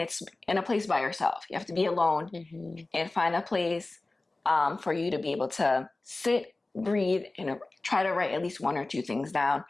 in a place by yourself. You have to be alone and find a place for you to be able to sit, breathe, and try to write at least one or two things down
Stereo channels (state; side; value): quieter; right; 3.1 dB